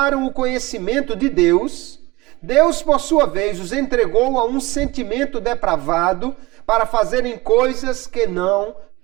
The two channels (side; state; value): left; quieter; 21.6 dB